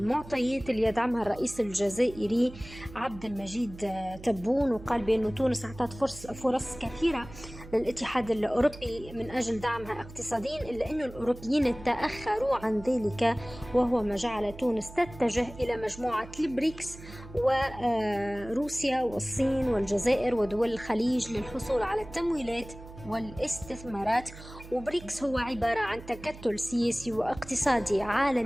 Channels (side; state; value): right; noise; hum, 16 dB below the sound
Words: اللي يدعمها الرئيس الجزائري عبد المجيد تبون، وقال بأن تونس أعطت فرص كثيرة للاتحاد الأوروبي من أجل دعمها اقتصاديا، إلا أن الأوروبيين تأخروا عن ذلك، وهو ما جعل تونس تتجه إلى مجموعة البريكس وروسيا والصين والجزائر ودول الخليج للحصول على التمويلات والاستثمارات. وبريكس هو عبارة عن تكتل سياسي واقتصادي